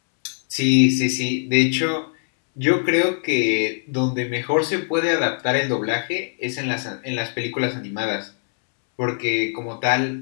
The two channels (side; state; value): right; silent; 64 dB below the other